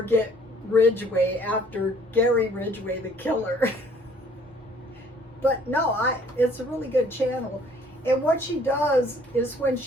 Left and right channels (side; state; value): both; normal; correlation 0.59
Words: Ridgway after Gary Ridgway, the killer? But no, it's a really good channel. And what she does is when